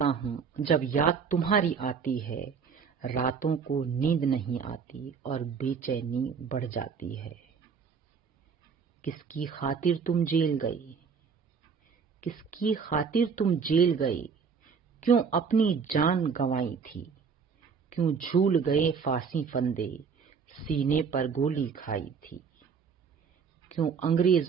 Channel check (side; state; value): left; quieter; 6.0 dB